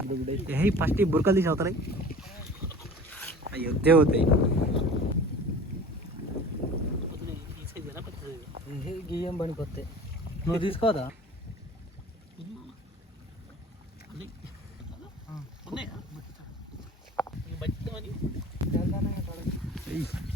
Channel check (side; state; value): both; normal; correlation 0.42